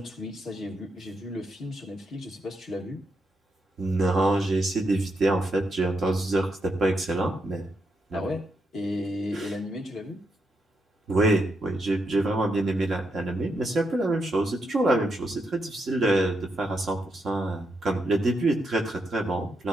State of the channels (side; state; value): both; normal; correlation 0.82